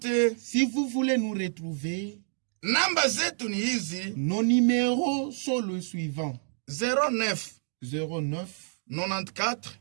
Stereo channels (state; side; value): silent; left; digital silence